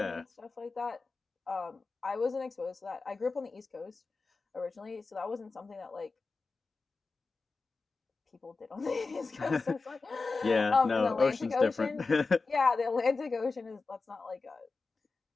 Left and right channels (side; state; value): right; quieter; 4.0 dB